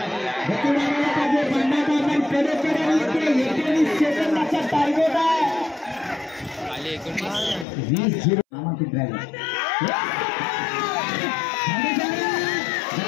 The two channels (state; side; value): drops out; right; at 7.7 s